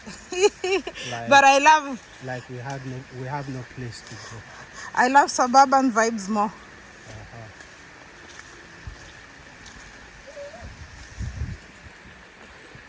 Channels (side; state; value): both; identical; correlation 1.00